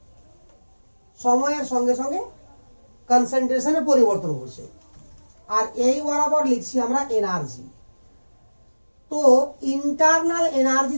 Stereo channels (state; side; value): inverted; both; correlation -1.00